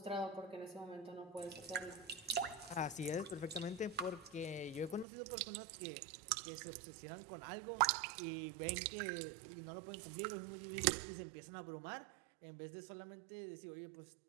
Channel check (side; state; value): left; drops out; at 5.1 s